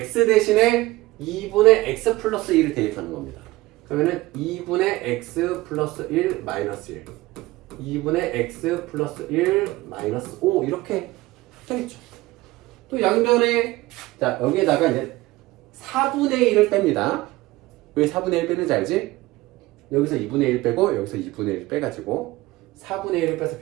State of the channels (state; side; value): quieter; left; 19.0 dB